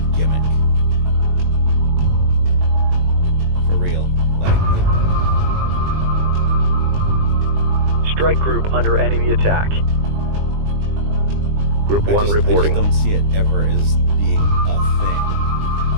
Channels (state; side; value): late; left; 20 ms